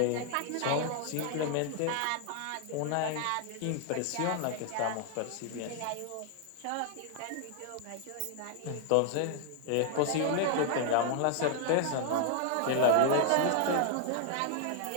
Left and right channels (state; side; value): different; both; correlation 0.00